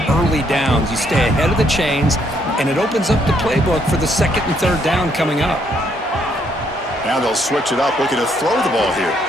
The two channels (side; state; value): both; normal; correlation 0.71